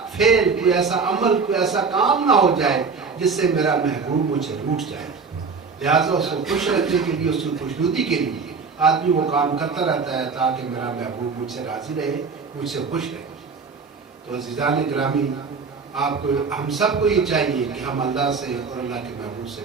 فعل، کوئی ایسا عمل، کوئی ایسا کام نہ ہو جائے جس سے میرا محبوب مجھ سے روٹھ جائے. لہٰذا اس کو خوش رکھنے کے لیے، اس کی خوشنودی کے لیے آدمی وہ کام کرتا رہتا ہے تاکہ میرا محبوب مجھ سے راضی رہے، مجھ سے خوش رہے. تو عزیزان گرامی، آپ کو، ہم سب کو یہ چاہیے کہ ہم اللہ سے اور اللہ کے محبوب سے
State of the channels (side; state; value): left; quieter; 5.0 dB